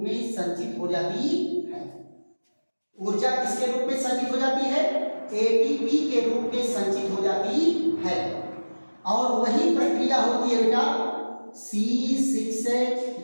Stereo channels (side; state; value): both; inverted; correlation -1.00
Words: में संचित हो जाती है। ऊर्जा किसके रूप में संचित हो जाती है? ATP के रूप में संचित हो जाती है। और वही प्रक्रिया होती है बेटा C6H12O6,